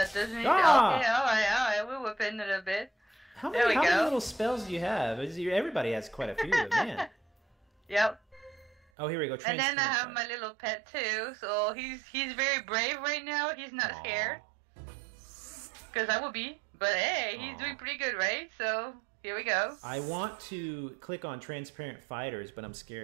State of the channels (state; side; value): drops out; left; at 8.8 s